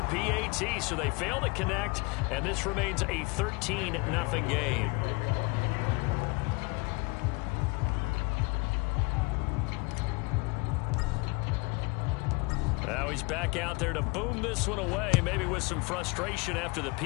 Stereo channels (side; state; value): right; quieter; 27.5 dB